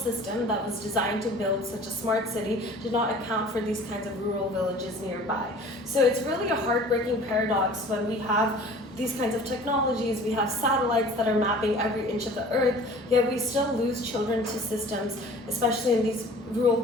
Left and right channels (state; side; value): normal; both; correlation 0.46